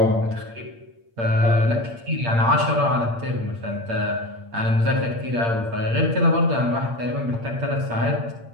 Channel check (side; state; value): left; late; 8.7 ms